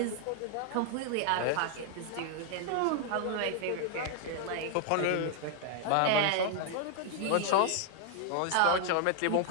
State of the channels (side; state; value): both; different; correlation 0.00